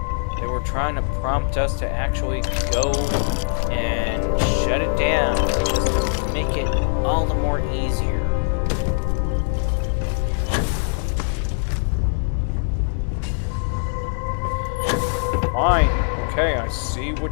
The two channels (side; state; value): right; silent; digital silence